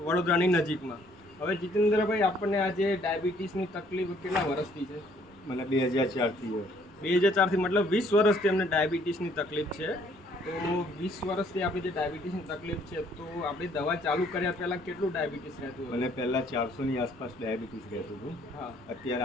વડોદરાની નજીકમાં. હવે જીતેન્દ્રભાઈ, આપણને આજે ડાયાબિટીસની તકલીફ કેટલા વર્ષથી છે? મને 2004થી 2004થી, મતલબ 20 વર્ષથી અમને ડાયાબિટીસની તકલીફ છે. તો 20 વર્ષથી આપણી જે ડાયાબિટીસની તકલીફ છે, તો આપણી દવા ચાલુ કર્યા પહેલાં કેટલું ડાયાબિટીસ રહેતું હતું? મને પહેલાં 400ની આસપાસ ડાયાબિટીસ રહેતું હતું. હા. અત્યારે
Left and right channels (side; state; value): both; normal; correlation 0.63